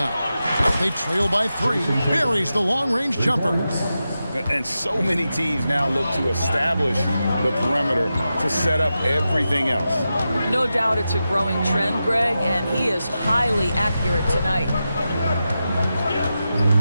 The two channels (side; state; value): both; inverted; correlation -0.91